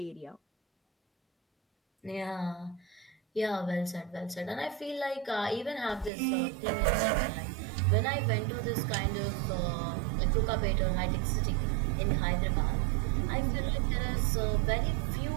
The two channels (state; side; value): drops out; left; at 6.1 s